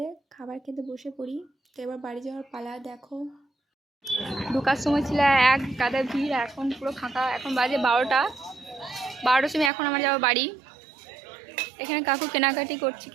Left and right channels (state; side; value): drops out; left; at 9.7 s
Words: খাবার খেতে বসে পড়ি। তো এবার বাড়ি যাওয়ার পালা। দেখো ঢোকার সময় ছিল এক গাদা ভিড়, এখন পুরো ফাঁকা। এখন বাজে 12টার সময় এখন আমার যাওয়া বাড়ি। এখানে কাকু কেনাকাটি করছে